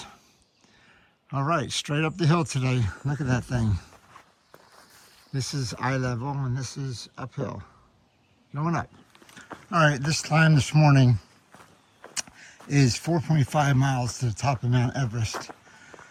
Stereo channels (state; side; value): identical; both; correlation 1.00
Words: All right, straight up the hill today. Look at that thing. This is eye level, and this is uphill. Going up. All right, this climb this morning is 4.5 miles to the top of Mount Everest